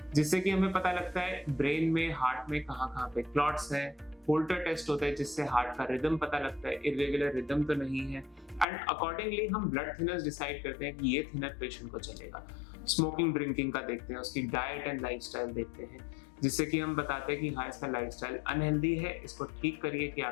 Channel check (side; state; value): right; drops out; at 8.7 s